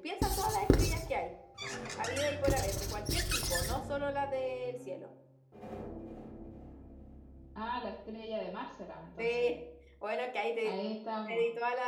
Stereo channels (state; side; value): identical; both; correlation 1.00